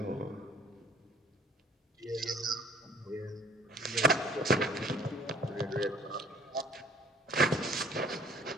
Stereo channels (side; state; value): both; normal; correlation 0.54